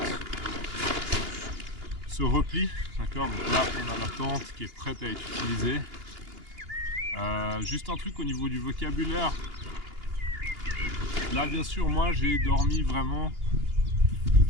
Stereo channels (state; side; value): late; left; 2.8 ms